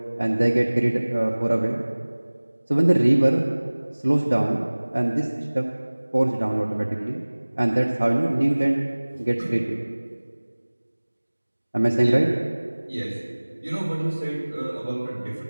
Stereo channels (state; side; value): inverted; both; correlation -1.00